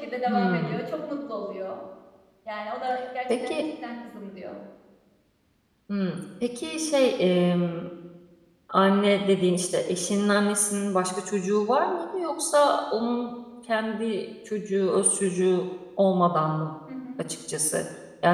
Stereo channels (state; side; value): identical; both; correlation 1.00